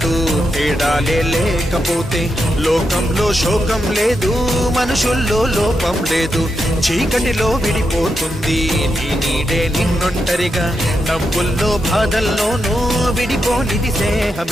తేడాలే లేకపోతే లోకంలో శోకం లేదు మనుషుల్లో లోపం లేదు చీకటిలో విడిపోతుంది నీ నీడే నిన్నొంటరిగా నవ్వుల్లో బాధల్లోనూ విడిపోనిది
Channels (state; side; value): normal; both; correlation 0.85